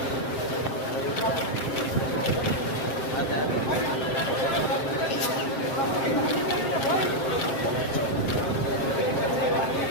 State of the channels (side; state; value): right; late; 7.6 ms